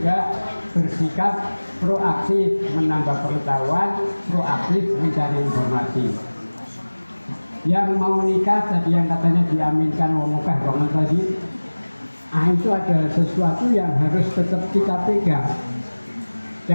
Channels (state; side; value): inverted; both; correlation -1.00